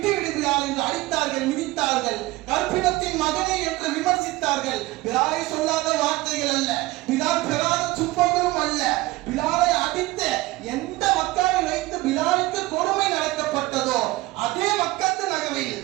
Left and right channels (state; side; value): quieter; left; 19.4 dB